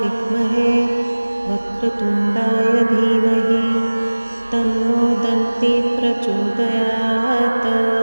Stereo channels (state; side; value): inverted; both; correlation -1.00